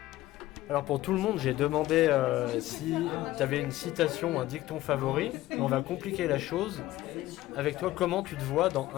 Alors pour tout le monde, j'ai demandé si tu avais une citation ou un dicton favori. Mais on va compliquer la chose. Avec toi, comment tu te vois dans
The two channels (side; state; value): right; quieter; 16.0 dB